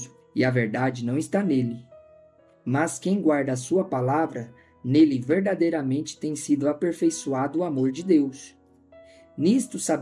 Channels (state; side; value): identical; both; correlation 1.00